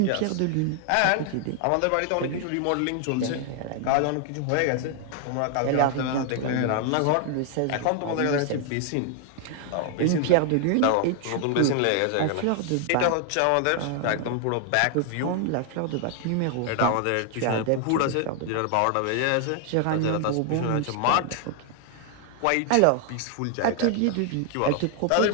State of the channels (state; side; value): different; both; correlation 0.00